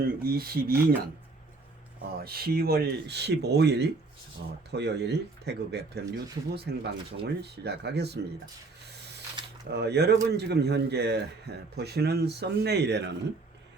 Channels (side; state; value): left; quieter; 3.6 dB